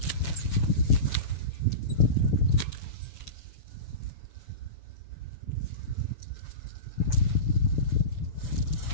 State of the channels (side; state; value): right; late; 6.8 ms